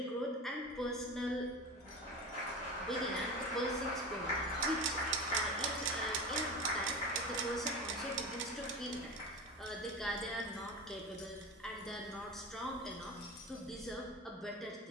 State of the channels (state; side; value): normal; both; correlation 0.28